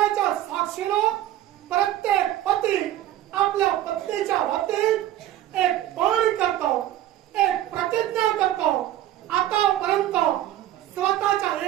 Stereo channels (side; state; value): left; quieter; 13.3 dB